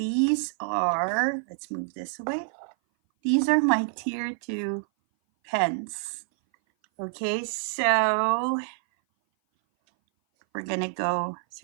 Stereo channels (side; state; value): left; silent; 57 dB below the other